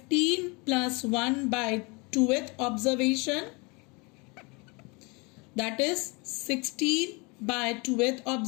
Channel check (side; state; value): right; quieter; 28.6 dB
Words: plus 1 by 2th observation, that is 16 by 2th